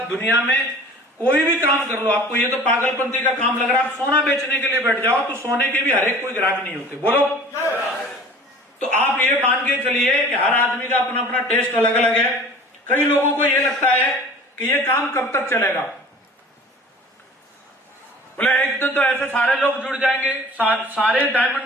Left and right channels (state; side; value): normal; both; correlation 0.45